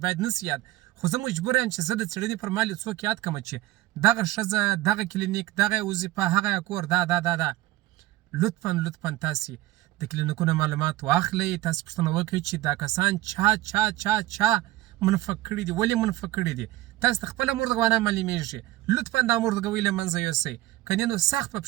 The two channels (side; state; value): left; quieter; 16.6 dB